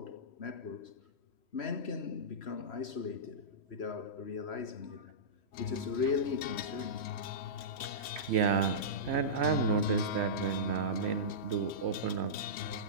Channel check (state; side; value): late; right; 3.2 ms